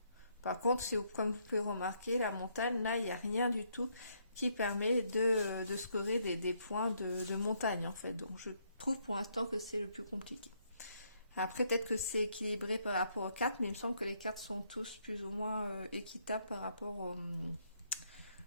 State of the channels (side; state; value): both; inverted; correlation -0.72